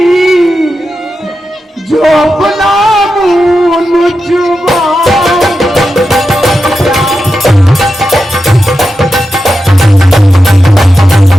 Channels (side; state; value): both; normal; correlation 0.90